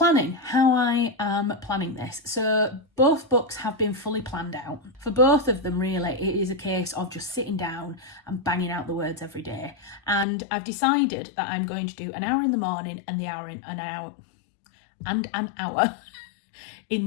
how I am planning this. So both books have been fully planned out. For both of them, really, it is a case of just sitting down and banging out the words every day. And I've decided that I'm going to do an hour in the morning and an hour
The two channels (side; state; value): right; drops out; at 10.2 s